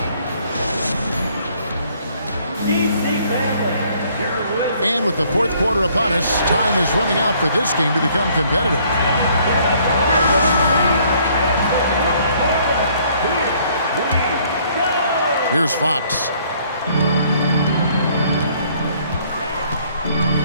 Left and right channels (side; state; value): both; inverted; correlation -0.62